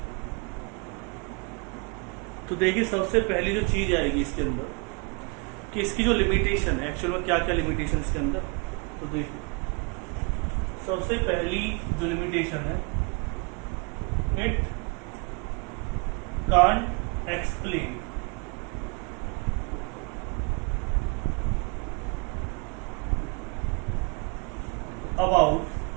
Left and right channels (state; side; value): quieter; left; 33.0 dB